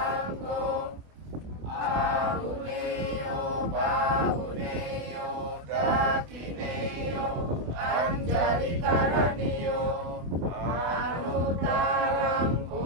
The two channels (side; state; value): left; late; 24 ms